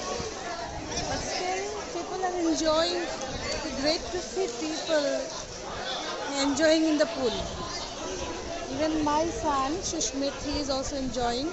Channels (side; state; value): both; identical; correlation 1.00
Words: But still, people are enjoying. It's great to see people enjoying in the pool. Even my son, Sushmit, he is also enjoying.